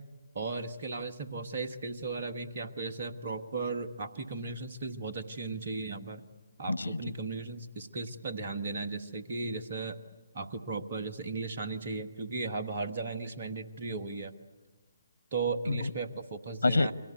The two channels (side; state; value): both; inverted; correlation -0.69